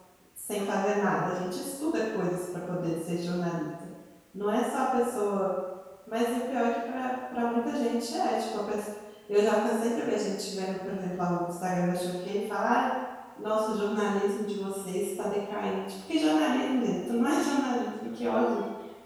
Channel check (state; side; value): identical; both; correlation 1.00